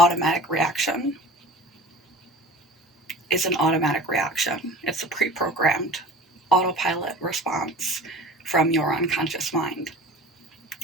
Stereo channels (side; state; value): both; normal; correlation 0.40